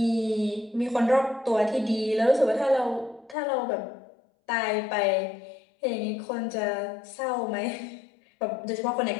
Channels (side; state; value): right; drops out; at 3.4 s